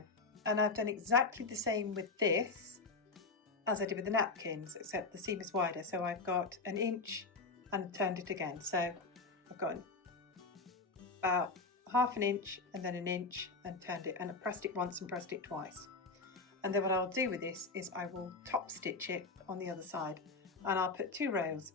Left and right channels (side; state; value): right; quieter; 3.8 dB